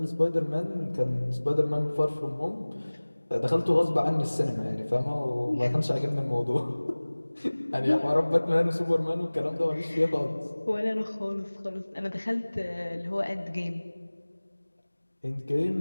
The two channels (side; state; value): both; inverted; correlation -1.00